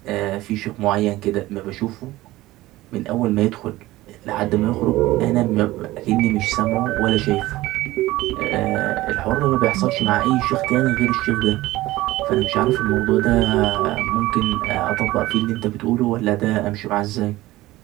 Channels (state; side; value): quieter; left; 17.7 dB